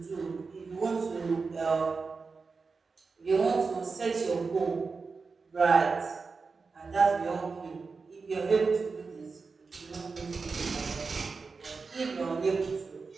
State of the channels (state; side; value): quieter; left; 4.6 dB